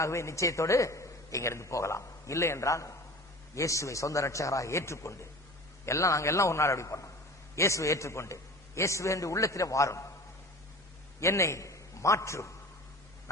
நிச்சயத்தோடு இங்கிருந்து போகலாம். இல்லை என்றால் இயேசுவை சொந்த ரட்சகராக ஏற்றுக்கொண்டு, நாங்க எல்லாம் ஒரு நாள் அப்படி பண்ணோம், இயேசுவை ஏற்றுக்கொண்டு இயேசுவை என்று உள்ளத்திலே வாரும், என்னை மாற்றும்,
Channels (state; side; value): normal; both; correlation 0.38